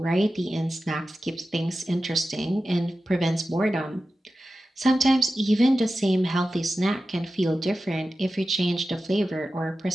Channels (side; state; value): both; normal; correlation 0.93